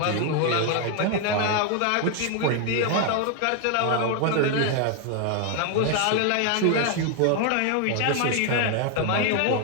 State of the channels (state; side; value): different; both; correlation 0.00